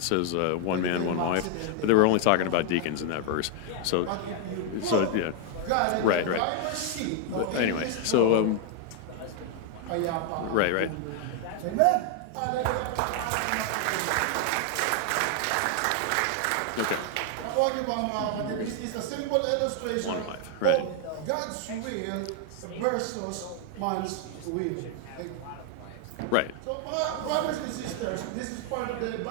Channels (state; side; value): different; both; correlation 0.00